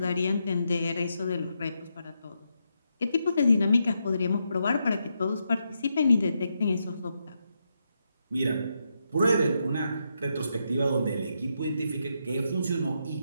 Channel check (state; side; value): inverted; both; correlation -0.82